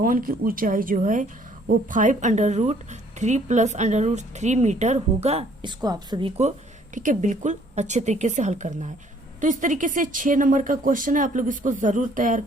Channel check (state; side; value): normal; both; correlation 0.61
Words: की ऊंचाई जो है वो 5√3 प्लस √3 मीटर होगा। इसको आप सभी को, ठीक है, बिल्कुल अच्छे तरीके से हल करना है। तो इस तरीके से 6 नंबर का क्वेश्चन है, आप लोग इसको जरूर तैयार